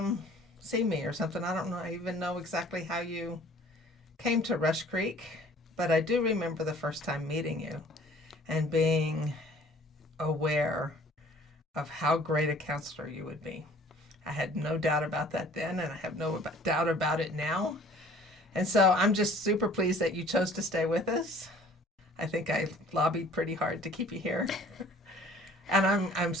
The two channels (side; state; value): both; normal; correlation 0.52